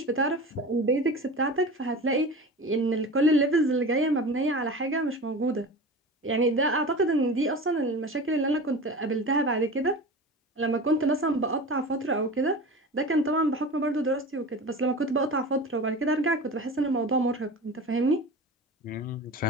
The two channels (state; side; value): normal; both; correlation 0.33